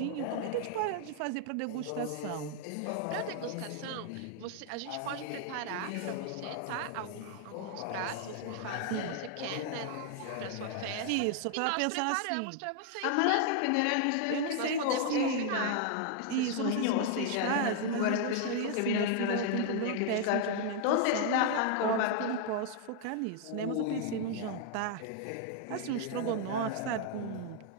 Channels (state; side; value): different; both; correlation 0.00